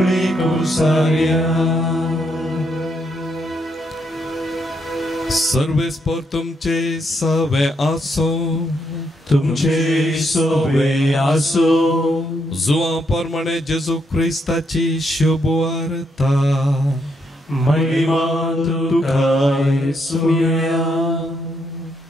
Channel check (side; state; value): both; normal; correlation 0.77